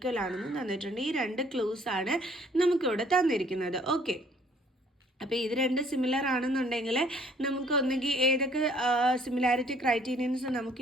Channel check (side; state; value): both; normal; correlation 0.60